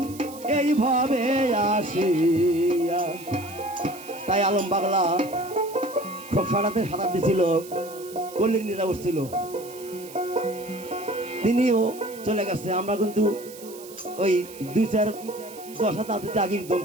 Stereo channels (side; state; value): right; noise; hiss, 17 dB below the sound